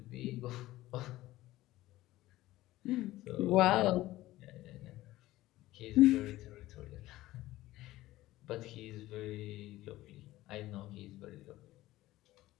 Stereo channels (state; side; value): quieter; right; 16.6 dB